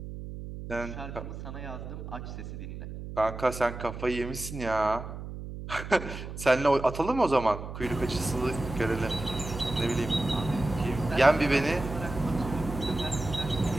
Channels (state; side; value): noise; right; hum, 9 dB below the sound